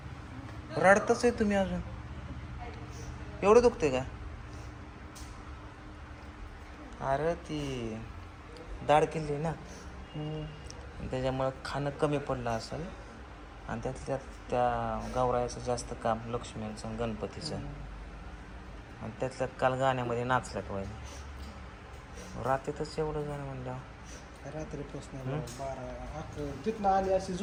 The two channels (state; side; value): identical; both; correlation 1.00